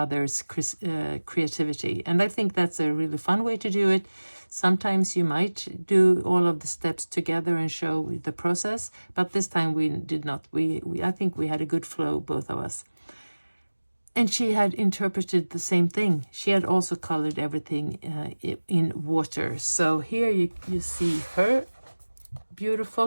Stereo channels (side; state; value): both; inverted; correlation -1.00